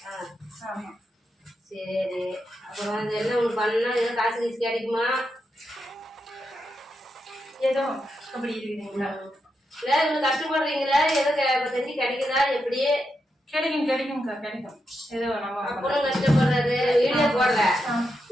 ஆமா. சரி, அப்புறம் வந்து என்ன ஒன்று பண்ணா ஏதோ காசு கீசு கிடைக்குமா? ஏதோ அப்படி இருக்குதுங்களா? இல்ல இவ்வளவு கஷ்டப்படுறீங்களா? ஏதோ செஞ்சு கிடைக்குதா? எப்படி? கிடைக்கும்க்கா கிடைக்கும். ஏதோ நம்ம அப்பனும் கஷ்டப்படுறாரு. வீடியோ போடுற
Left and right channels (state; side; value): normal; both; correlation 0.85